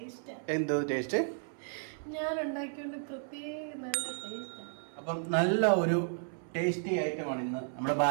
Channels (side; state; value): left; silent; 55 dB below the other